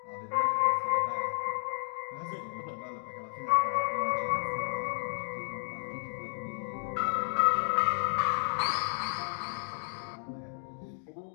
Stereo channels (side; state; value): right; silent; digital silence